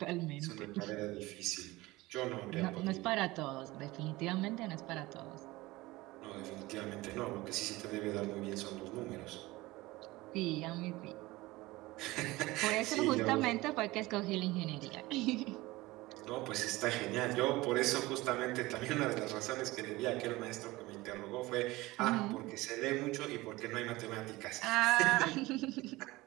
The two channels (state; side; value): quieter; left; 20.0 dB